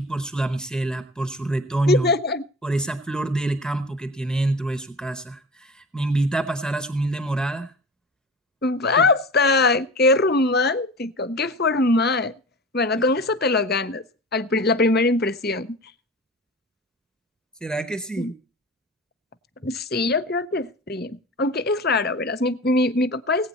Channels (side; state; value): both; normal; correlation 0.36